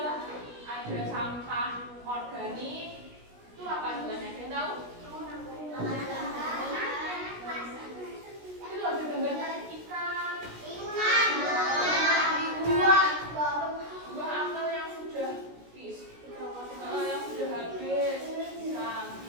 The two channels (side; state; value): left; late; 16 ms